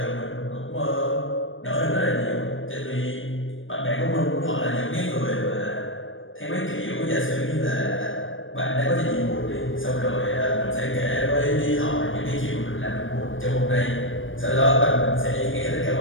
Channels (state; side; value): late; right; 0.58 ms